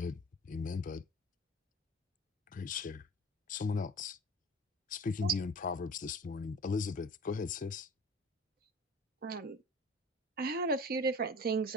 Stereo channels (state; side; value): normal; both; correlation 0.40